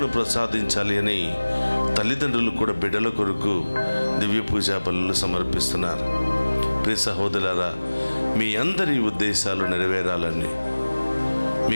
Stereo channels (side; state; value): both; inverted; correlation -1.00